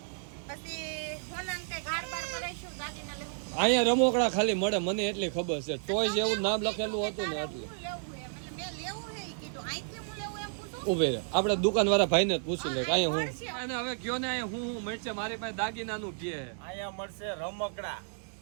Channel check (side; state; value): left; silent; digital silence